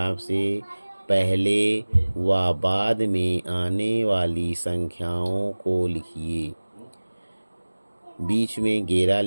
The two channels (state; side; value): inverted; both; correlation -1.00